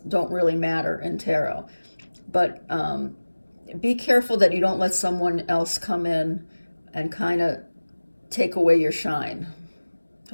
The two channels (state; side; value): inverted; both; correlation -1.00